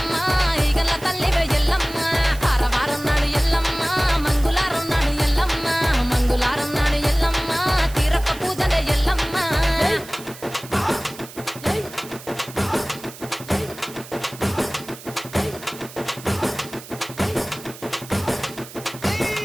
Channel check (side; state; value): right; noise; hiss, 16 dB below the sound